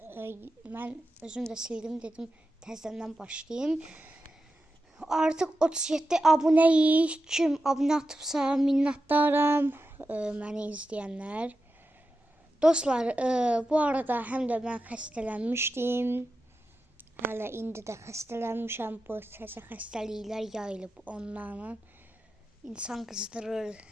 mən özüm də sildim, dedim təzədən başlayayım. Artıq 37 abunəyik. Kim abunə atıbsa minnətdaram məni izləyənlər. Dostlar, bu arada həm də mən xəstələnmişdim. Hələ indi də xəstələnmişəm. Bu təzə xəstəliklər yayılıb onlarla. İnsan qızdırır,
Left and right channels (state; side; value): normal; both; correlation 0.91